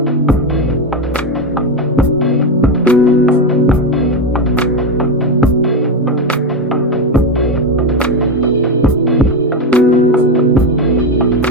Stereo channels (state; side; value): normal; both; correlation 0.11